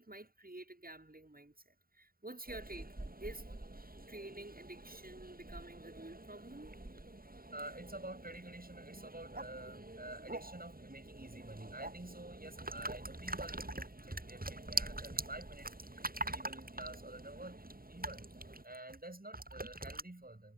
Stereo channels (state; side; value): late; left; 0.43 ms